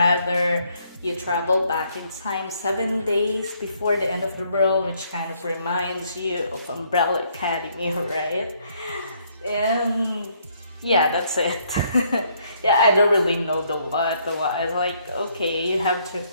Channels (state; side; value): inverted; both; correlation -0.68